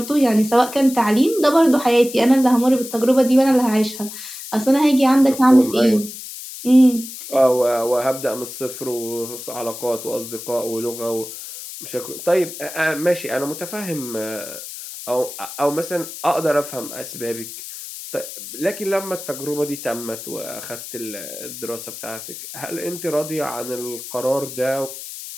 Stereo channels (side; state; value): left; noise; hiss, 11 dB below the sound